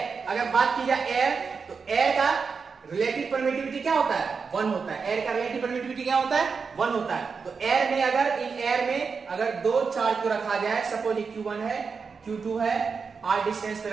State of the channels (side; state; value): left; quieter; 5.3 dB